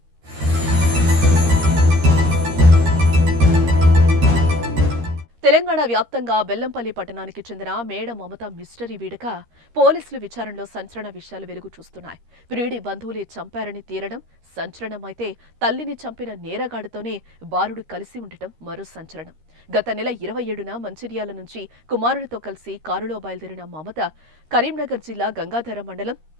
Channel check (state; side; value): late; left; 13 ms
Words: తెలంగాణ వ్యాప్తంగా బెల్లంపల్లి పట్టణానికి చెందిన మేడ మమత మిస్టరీ వీడక పోలీసులు విచారణలో సంచలన విషయాలు వెలుగు చూస్తున్నాయి. ప్రియుడి బంధువులే చంపారని తేలడం సంచలనమైతే తల్లిని చంపిన నేరగాడితోనే బాలుడు కలిసి ఉండటం మరో సంచలనం. గత నెల 27న మంచిర్యాల నుంచి కుమారుడితో కలిసి కారులో బయలుదేరిన మమత కరీంనగర్ జిల్లా గంగాధర మండలం